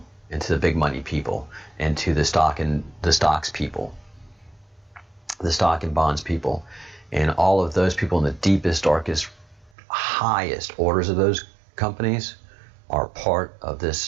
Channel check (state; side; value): drops out; left; at 9.7 s